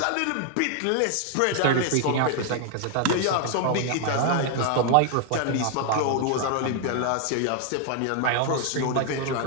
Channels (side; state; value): both; different; correlation 0.00